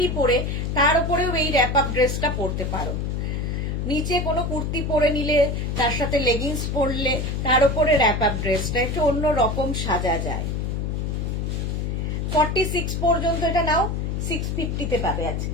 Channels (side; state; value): left; noise; hum, 1 dB below the sound